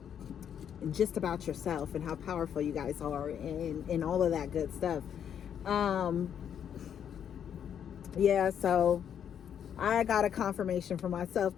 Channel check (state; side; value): quieter; right; 8.7 dB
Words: just about yourself and how powerful you guys are, and all of that good stuff. Yeah, so I got a confirmation for myself